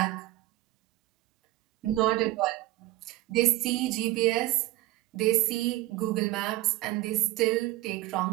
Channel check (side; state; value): left; quieter; 17.4 dB